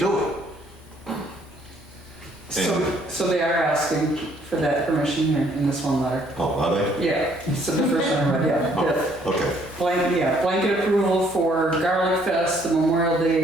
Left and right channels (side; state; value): both; normal; correlation 0.64